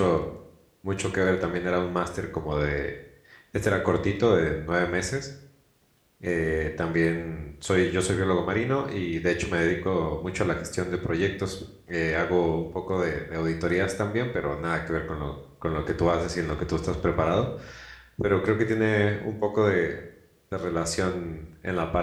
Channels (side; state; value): both; identical; correlation 1.00